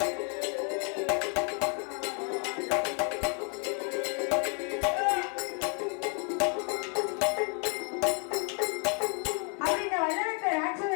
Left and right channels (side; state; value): right; quieter; 38.5 dB